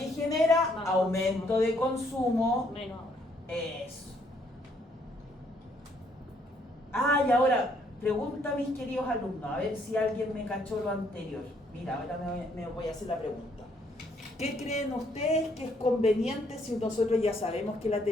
genera? Aumento de consumo. Menos ahora. Eso. Ah, y ahora, pregunta a mis queridos alumnos, a ver si alguien me cachó lo anterior. Mira, ahora me voy a hacer la pregunta. ¿Qué creen ustedes que es conveniente si nosotros ya sabemos que la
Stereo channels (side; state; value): both; normal; correlation 0.68